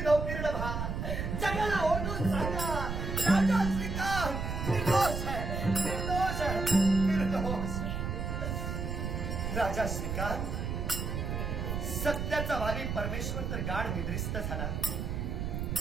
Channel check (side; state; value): right; noise; rumble, 3 dB below the sound